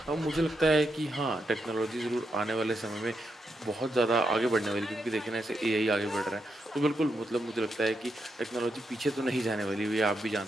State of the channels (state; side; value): normal; both; correlation 0.83